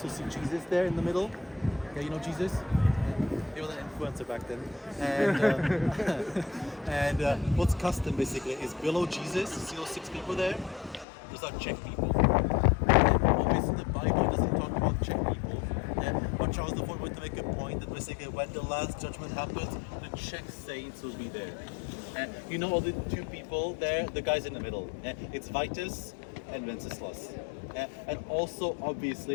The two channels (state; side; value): drops out; right; at 11.1 s